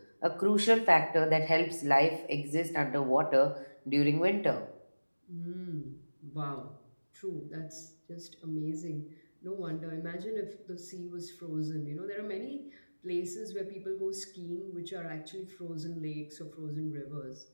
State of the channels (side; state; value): both; inverted; correlation -1.00